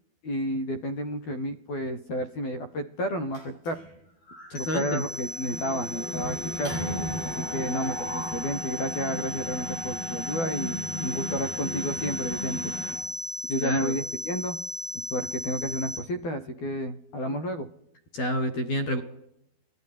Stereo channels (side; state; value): right; late; 12 ms